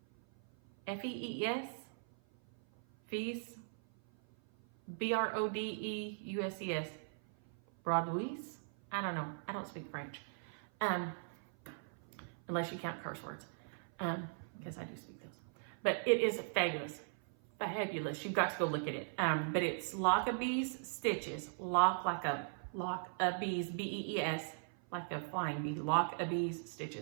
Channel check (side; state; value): left; silent; 52 dB below the other